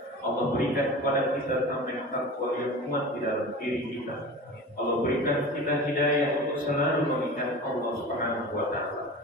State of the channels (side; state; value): both; normal; correlation 0.34